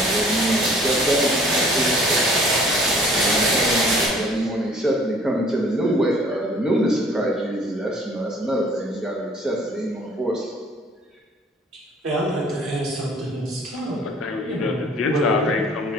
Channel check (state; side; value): normal; both; correlation 0.54